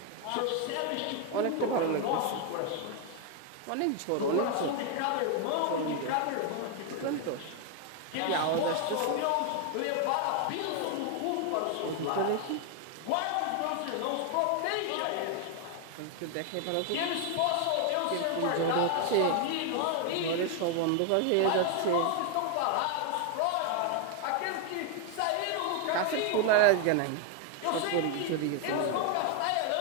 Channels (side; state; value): both; different; correlation 0.00